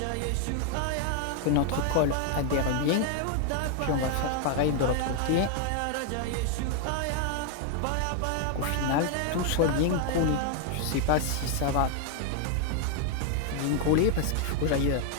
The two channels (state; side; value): different; both; correlation 0.00